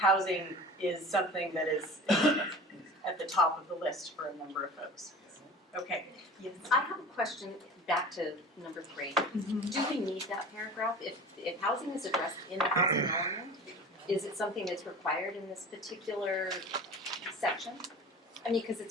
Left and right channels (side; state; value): both; normal; correlation 0.38